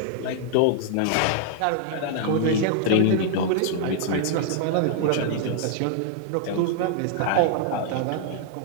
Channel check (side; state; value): both; different; correlation -0.01